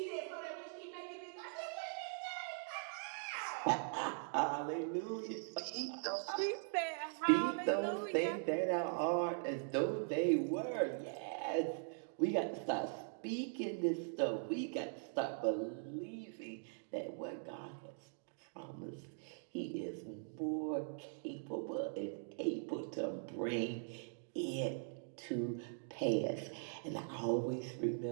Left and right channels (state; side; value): silent; left; digital silence